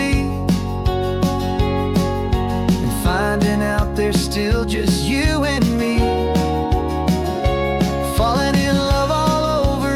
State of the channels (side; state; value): both; identical; correlation 1.00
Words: and finding out there's still just you and me. Falling in love all